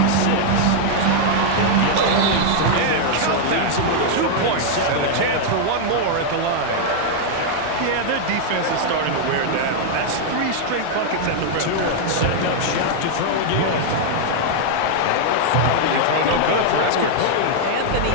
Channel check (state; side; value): different; both; correlation -0.01